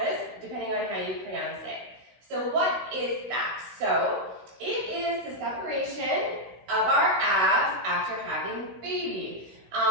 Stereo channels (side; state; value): left; late; 16 ms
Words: depending on how you pronounce it. So what is that? So it is the separation of our abs after having baby.